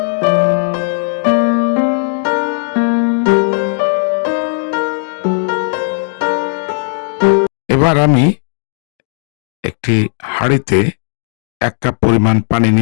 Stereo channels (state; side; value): silent; right; 70 dB below the other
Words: এবার আমি একটি হাঁড়িতে 1 কাপ পরিমাণ পানি